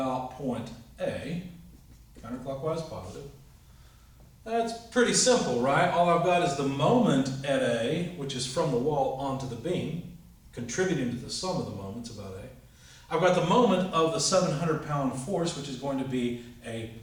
point A, counterclockwise positive, that's pretty simple, right? All I've got is the moment at A, which is from the wall onto the beam, contributing to the sum of the moments about A. I've got the moment of the 700-pound force, which is going to be a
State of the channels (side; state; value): both; identical; correlation 1.00